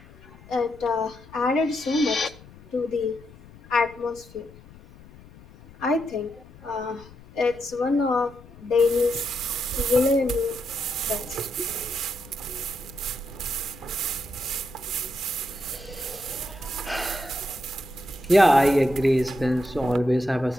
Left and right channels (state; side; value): noise; left; rumble, 21 dB below the sound